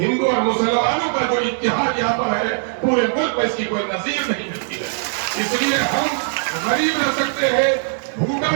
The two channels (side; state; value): left; silent; 66 dB below the other